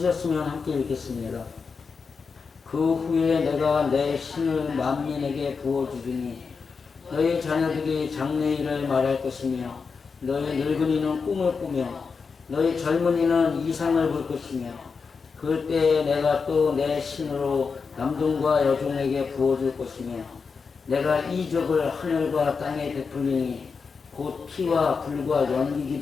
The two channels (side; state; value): right; quieter; 5.2 dB